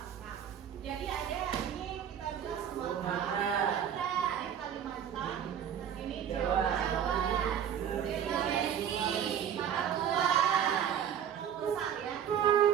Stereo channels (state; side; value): quieter; left; 9.1 dB